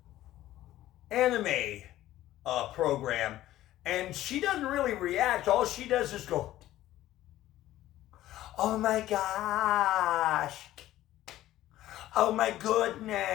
anime program. And she doesn't really react. All she does is go, oh my gosh. Oh my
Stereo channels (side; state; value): right; quieter; 14.4 dB